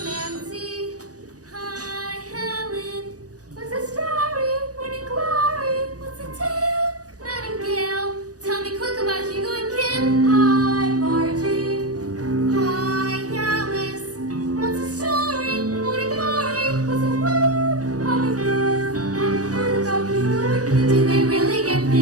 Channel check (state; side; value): late; left; 0.67 ms